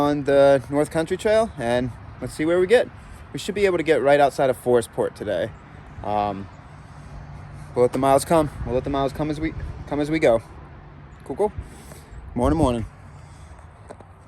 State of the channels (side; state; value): both; identical; correlation 1.00